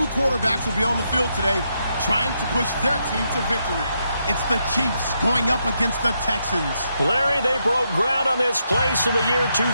quarterbacks will be on the field today trying to push their team to victory. It's the Chiefs going up against the Texans. Larry, they broke ground on this place in the year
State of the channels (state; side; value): inverted; both; correlation -0.80